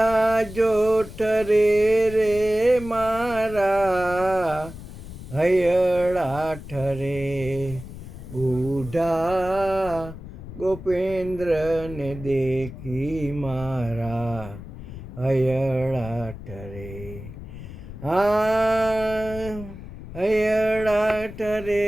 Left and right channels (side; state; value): left; noise; rumble, 13 dB below the sound